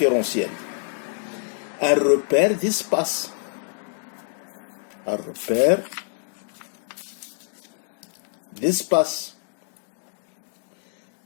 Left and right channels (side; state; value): right; silent; digital silence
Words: un repère d'espace. Un repère d'espace.